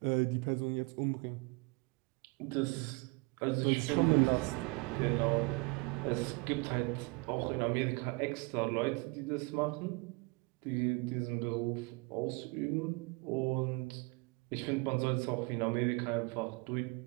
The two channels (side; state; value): left; quieter; 28.0 dB